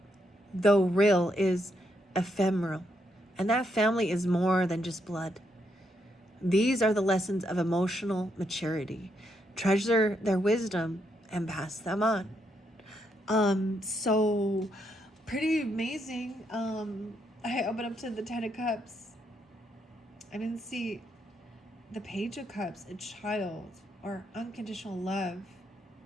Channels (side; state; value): both; normal; correlation 0.77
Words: though real, is ephemeral. And that family is more than just blood. These are the lessons of emotional maturity. Treasure their wisdom and pass them on. So pretty amazing. I opened up to the 10 of Cups. I didn't see the Page of Cups, a child or unconditional love,